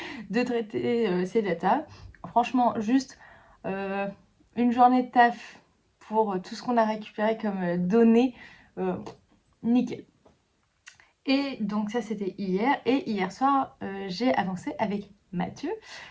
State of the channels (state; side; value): identical; both; correlation 1.00